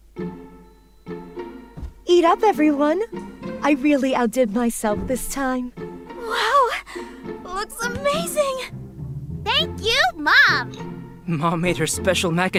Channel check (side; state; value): both; identical; correlation 1.00